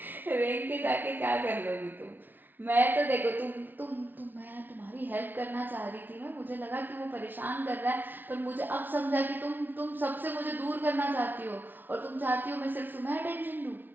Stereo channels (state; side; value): late; left; 0.090 ms